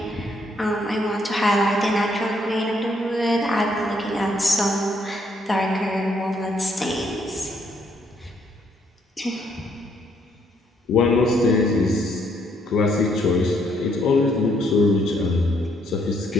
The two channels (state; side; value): normal; both; correlation 0.71